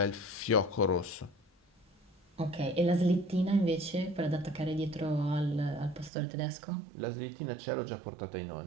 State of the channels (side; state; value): left; drops out; at 6.1 s